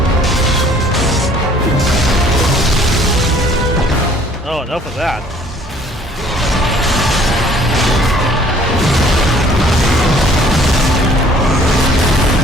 Oh, enough of that.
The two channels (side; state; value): both; normal; correlation 0.56